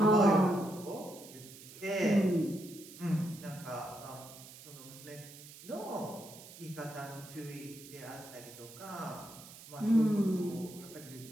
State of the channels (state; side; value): noise; right; hiss, 17 dB below the sound